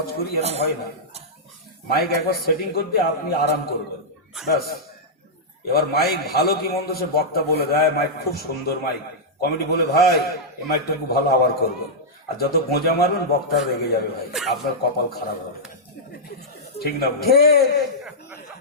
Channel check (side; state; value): both; normal; correlation -0.09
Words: করি, এরকম হয় না। মাইক একবার সেটিং করতে আপনি আরাম করবেন, ব্যাস। এবার মাইক ভালো কি মন্দ সে বক্তা বলে দেয়, মাইক খুব সুন্দর মাইক, কমিটি বলে ভাই এই মাইকটা খুব ভালো, আবার করবেন। আর যত গোঁজা মারবেন বক্তা রেগে যাবে ভাই, আপনার কপাল খারাপ হবে। ঠিক না?